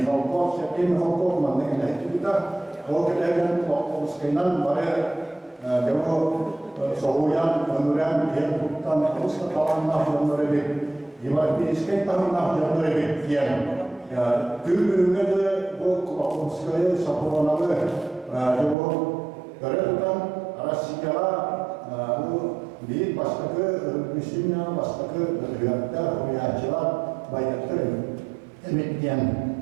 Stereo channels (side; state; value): left; drops out; at 18.8 s